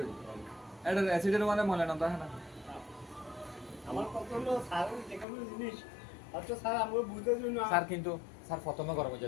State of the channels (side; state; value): right; drops out; at 5.2 s